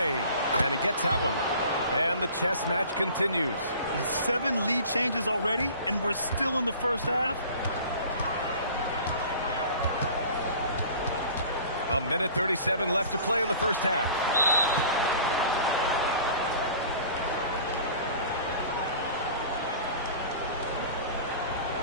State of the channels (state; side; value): inverted; both; correlation -0.44